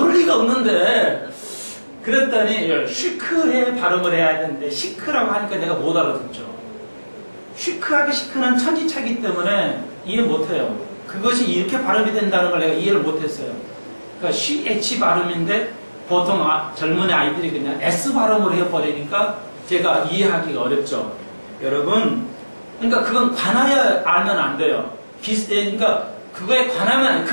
리가 없는데, 그랬더니 쉬크에 발음을 해야 되는데 시크라고 하니까 내가 못 알아듣죠. 쉬크하게 시크는 천지차기 때문에 이해 못해요. 그것이 이렇게 발음이 된다는 걸 내가 이해를 못했어요. 그러니까 CH 발음인데 보통 젊은 아이들이 그냥 S 발음으로 해버리니까 제가 이해하기가 어렵죠. 여러분, 그러니까 그건 관하여 알면 안 돼요. 그러니까 그거에 관하면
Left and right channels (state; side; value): inverted; both; correlation -1.00